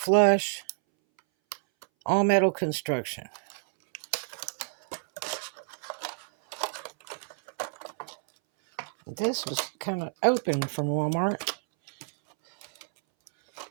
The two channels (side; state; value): left; silent; 59 dB below the other